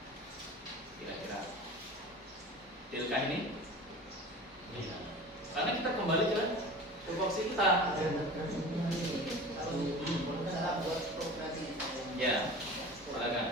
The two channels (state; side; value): normal; both; correlation 0.37